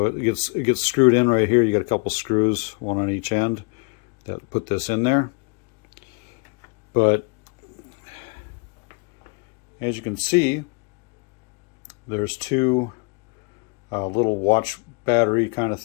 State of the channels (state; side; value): quieter; right; 32.6 dB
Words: it gets screwed in right here. You got a couple screws, one on each end, that put this in there. But as you can see, there's two little watch battery kind of